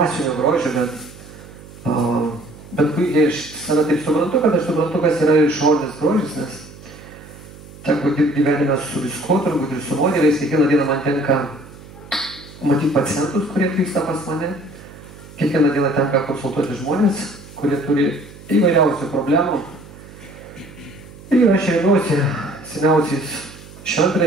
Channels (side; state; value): right; noise; hum, 19 dB below the sound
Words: grožio, bet puikiai aš save taip suprantu, kad aš suprantu, kas yra išorinis grožis, nes teko dirbti gyvenime su viskuo, turbūt ir su modeliais, kiekvieną dieną man tenka matyti pacientus, kurie atvyksta pas mane. Kiekvieną dieną tenka konsultuoti žmonės, kurie turi įvairiausių problemų. Ir aš remiuosi seniausiais